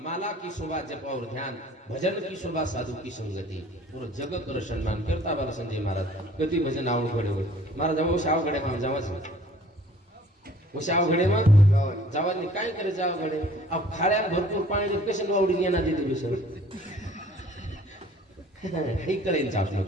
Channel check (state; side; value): normal; both; correlation 0.53